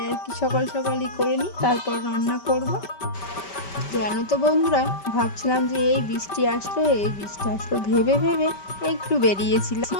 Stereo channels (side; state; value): right; late; 5.2 ms